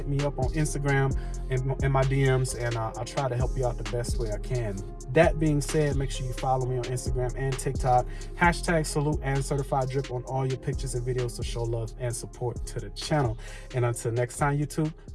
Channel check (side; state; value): both; identical; correlation 1.00